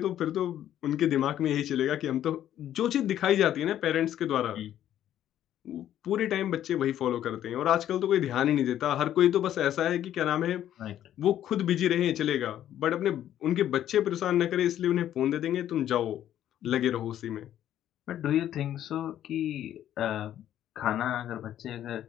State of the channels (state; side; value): quieter; right; 11.4 dB